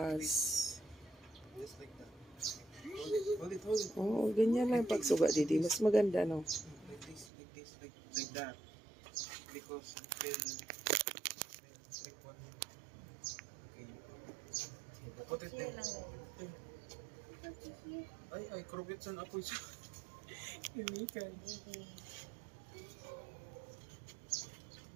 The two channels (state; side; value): drops out; left; at 7.3 s